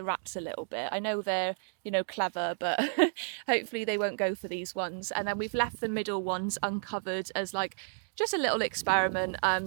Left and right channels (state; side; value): silent; left; digital silence